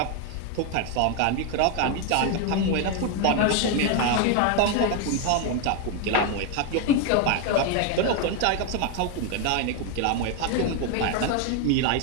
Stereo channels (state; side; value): different; both; correlation 0.01